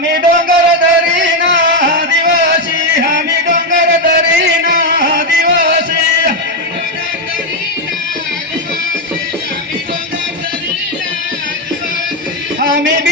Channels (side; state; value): both; normal; correlation 0.05